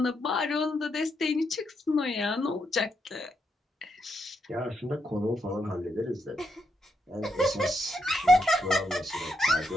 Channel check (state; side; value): normal; both; correlation 0.80